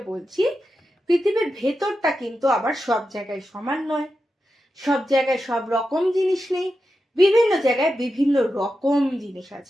বলছি। পৃথিবীর ভেতরটা কিন্তু আবার সব জায়গায় সমান নয়, সব জায়গায় সব রকম জিনিস নেই, বিভিন্ন জায়গায় বিভিন্ন রকম জিনিস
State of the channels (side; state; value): both; normal; correlation 0.90